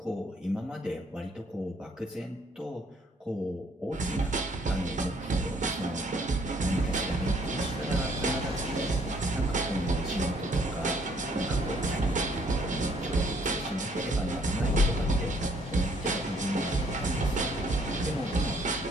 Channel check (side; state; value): both; normal; correlation 0.64